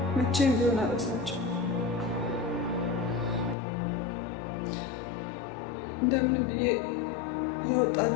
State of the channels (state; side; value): drops out; right; at 3.6 s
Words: መቼም ቢሆን አልረሳቸውም። እንደምንም ብዬ